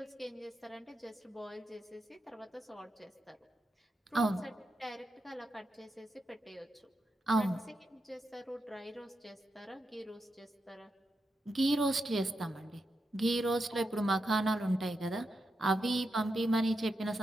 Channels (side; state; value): both; normal; correlation 0.86